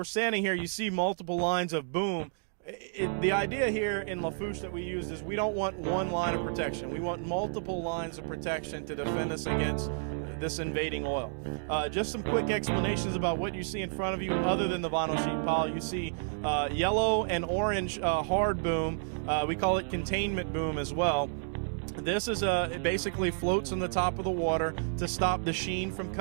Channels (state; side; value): silent; left; digital silence